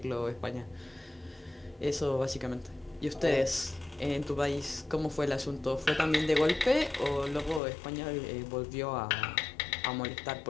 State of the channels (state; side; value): drops out; right; at 7.6 s